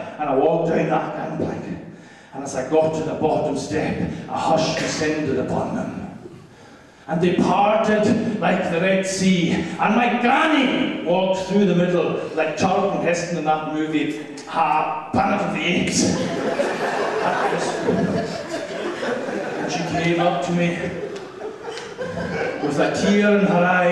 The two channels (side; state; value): both; identical; correlation 1.00